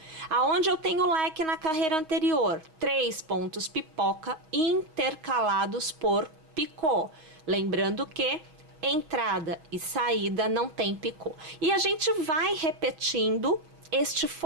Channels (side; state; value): left; late; 6.3 ms